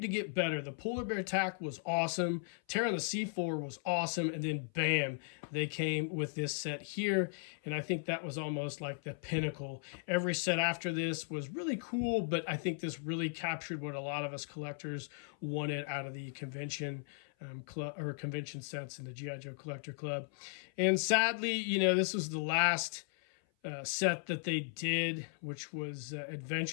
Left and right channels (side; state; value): right; silent; 53 dB below the other